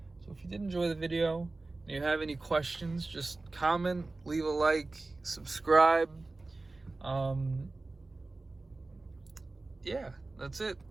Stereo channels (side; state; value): left; quieter; 3.3 dB